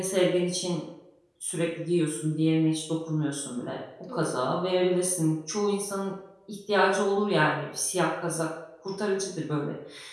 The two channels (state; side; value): identical; both; correlation 1.00